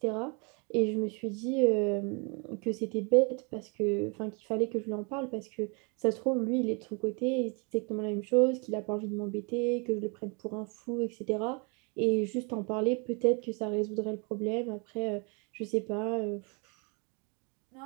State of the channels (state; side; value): quieter; left; 33.0 dB